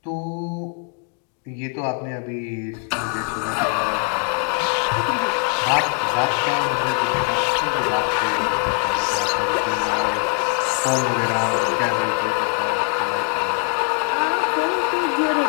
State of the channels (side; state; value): right; quieter; 32.7 dB